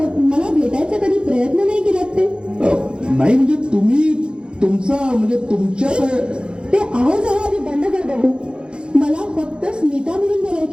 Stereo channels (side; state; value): left; late; 0.051 ms